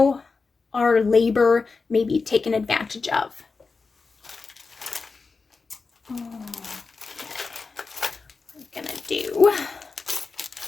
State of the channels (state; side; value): quieter; right; 4.4 dB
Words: our labor may be taken advantage of. Okay. We're gonna do